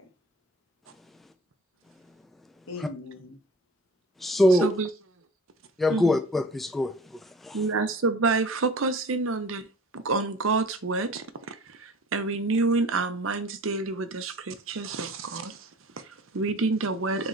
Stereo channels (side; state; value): both; normal; correlation 0.43